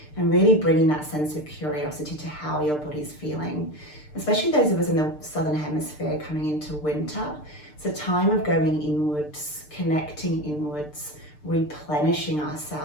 and really bringing that sense of curiosity to how your body's feeling. Especially those of us in the southern hemisphere coming into winter, it's a time of going inwards, connecting inwards, replenishing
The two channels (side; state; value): right; late; 6.7 ms